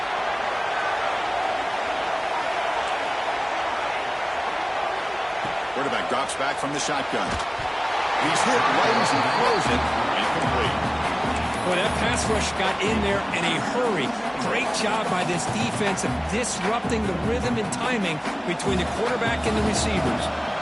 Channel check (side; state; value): both; identical; correlation 1.00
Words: Quarterback drops back from the shotgun. He's hit right as he throws it. Incomplete. Boy, that pass rush got in there in a hurry. Great job by this defense of disrupting the rhythm and timing between the quarterback and the receivers.